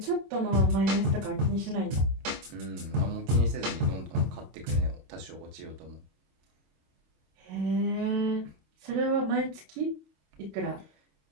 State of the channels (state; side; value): late; left; 26 ms